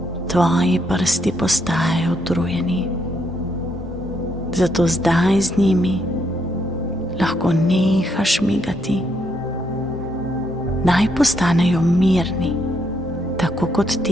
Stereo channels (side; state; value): both; normal; correlation 0.75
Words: Tvoji prsti postajajo utrujeni, zato zdaj z njimi lahko nehaš migati. Naj postanejo mirni, tako kot